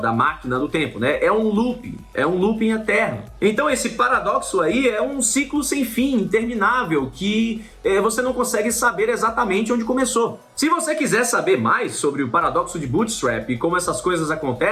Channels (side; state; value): both; identical; correlation 1.00